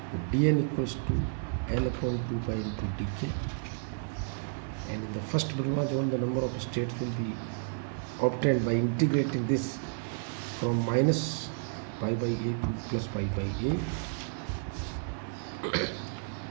dn equals to L upon 2 pi into dk. And in the first Brillouin zone, the number of states will be obtained by integrating this from minus pi by a to plus pi by a,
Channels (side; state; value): left; silent; digital silence